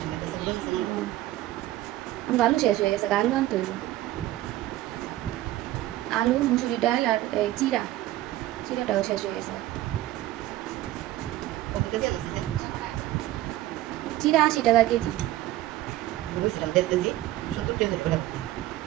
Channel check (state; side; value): quieter; left; 15.2 dB